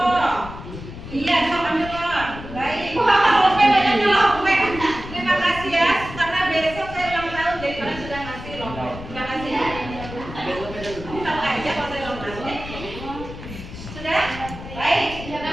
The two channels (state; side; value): noise; left; rumble, 12 dB below the sound